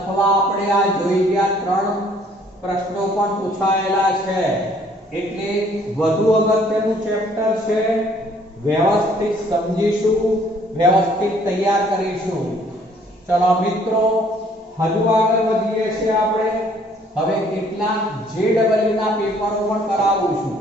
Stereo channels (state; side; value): normal; both; correlation 0.60